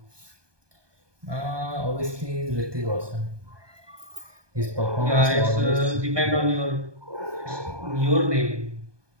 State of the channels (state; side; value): late; left; 1.2 ms